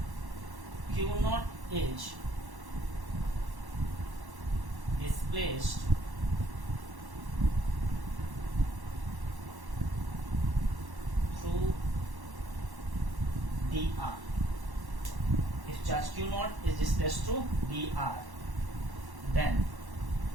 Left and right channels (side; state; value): left; late; 1.1 ms